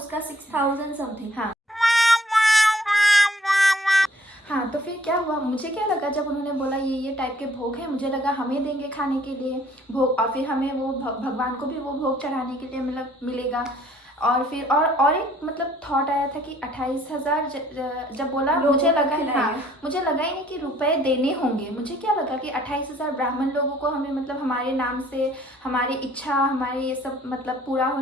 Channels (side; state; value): both; normal; correlation 0.60